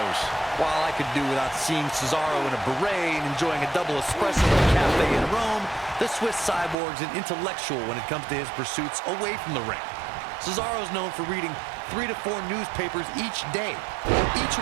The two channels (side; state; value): left; drops out; at 6.8 s